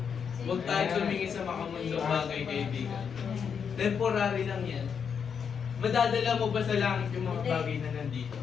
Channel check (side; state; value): right; quieter; 6.9 dB